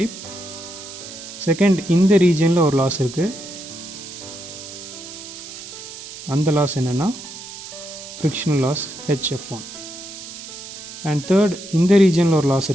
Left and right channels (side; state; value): right; noise; hiss, 12 dB below the sound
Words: Second, இந்த ரீஜனில் ஒரு லாஸ் இருக்குது, அந்த லாஸ் என்னென்னா frictional loss HF1. And third, இந்த ரீஜனில் ஒரு லாஸ்